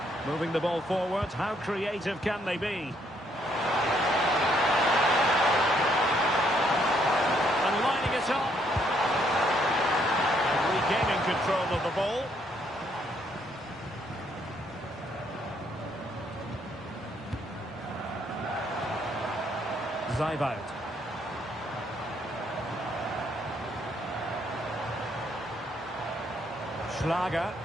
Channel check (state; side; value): normal; both; correlation 0.70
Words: Moving the ball forward. How creative can they be? And lining it up. And regaining control of the ball. Zaivout. Schlager.